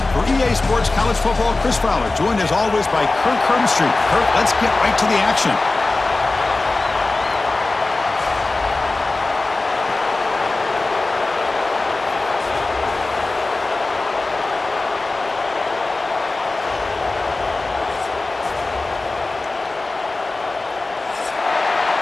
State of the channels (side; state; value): right; quieter; 3.3 dB